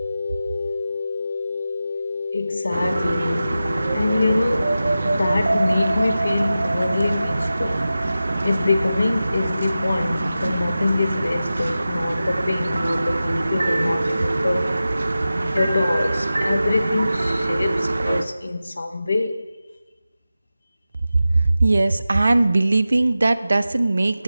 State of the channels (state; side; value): inverted; both; correlation -0.94